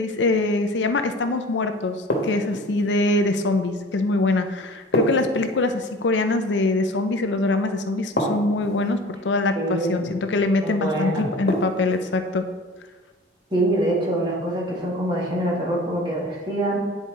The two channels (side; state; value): both; normal; correlation 0.42